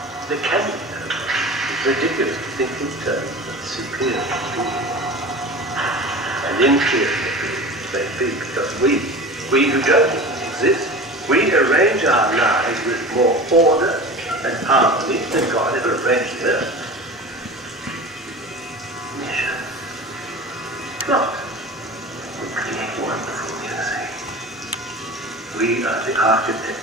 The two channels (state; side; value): normal; both; correlation 0.35